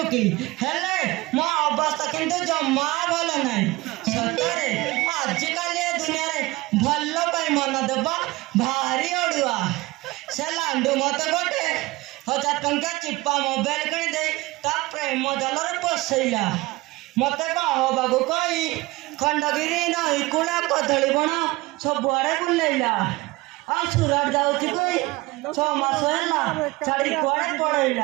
हेले मो अवस्था किंतु जम्मा भल नाई सतरे आजिकल ए दुनिया रे भल्लो पाई मन देबा भारी अडुआ से लांडू मते गोटे 1000 टंका चिप्पा मोबाइल किनी दे ता प्रेम जलरे पसैला मते कहो बाबू कई खंडगिरी नई कुला कदली बण सब आड़े बुलैला आ सुरट जाउछि कोई 6 मास हैला छाड़ी कोड़े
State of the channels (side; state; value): left; quieter; 20.9 dB